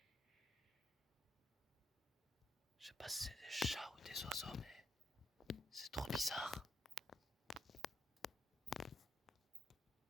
Je sais pas si c'est des chats ou des oiseaux, mais c'est trop bizarre.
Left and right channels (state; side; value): normal; both; correlation 0.77